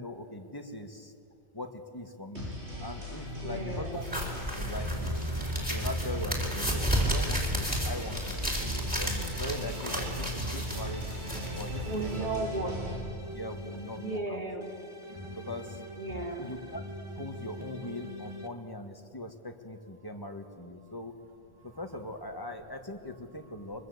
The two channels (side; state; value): both; normal; correlation 0.24